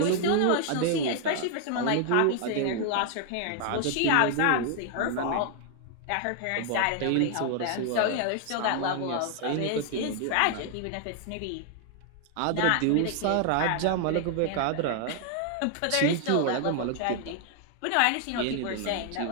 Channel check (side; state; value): both; different; correlation 0.00